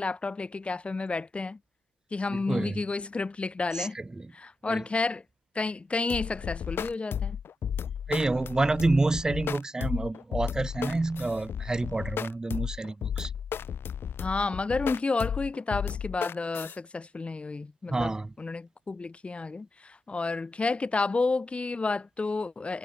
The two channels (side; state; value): both; normal; correlation 0.88